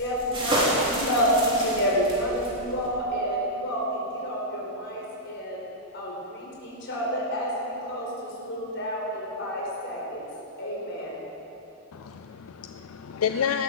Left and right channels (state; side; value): normal; both; correlation -0.11